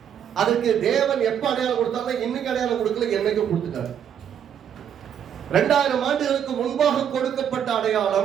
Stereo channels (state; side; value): quieter; left; 8.9 dB